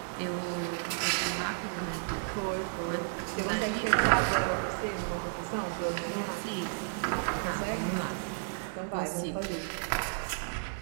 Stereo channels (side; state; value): left; silent; 56 dB below the other